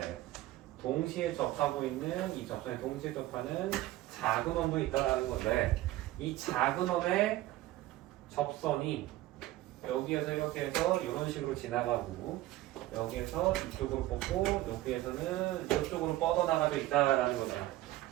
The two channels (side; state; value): left; quieter; 15.9 dB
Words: 동시에 접하고 있는 이 접선에 동시에 접하는 작은 원도 있다라는 건데, 이 작은 원의 접선이 여기에서 이렇게 해서 이런 식으로 지나가고 여기에서 이쪽으로 뽑고 여기에서는 이쪽으로 뻗어나가져 있다라는 거잖아.